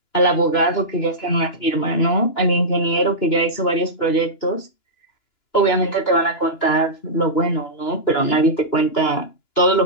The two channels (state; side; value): late; right; 2.9 ms